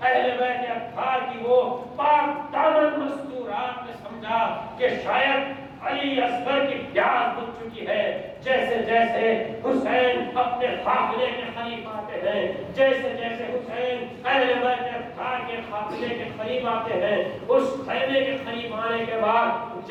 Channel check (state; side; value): identical; both; correlation 1.00